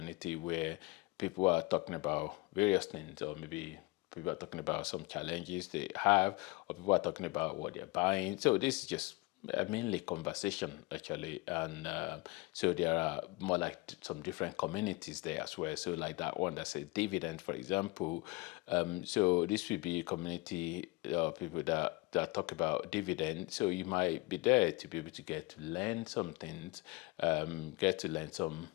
where people are talking about various things, or maybe people are talking about some challenges they have, or people are talking about what they're buying. So this is just mainly conversation actually, and so there are more like some different communities there as well. So like that one that says dividend, for example, so this will be a community of people that talk about dividend. So you might be there to be able to get to learn some things, get to learn some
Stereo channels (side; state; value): right; quieter; 23.6 dB